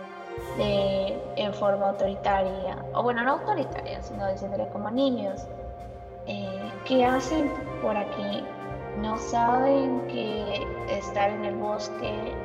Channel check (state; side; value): identical; both; correlation 1.00